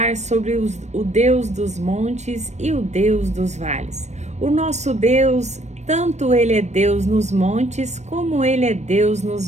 sobre o Deus dos montes e o Deus dos vales. O nosso Deus, tanto Ele é Deus nos montes, como Ele é Deus nos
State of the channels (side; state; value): left; late; 0.33 ms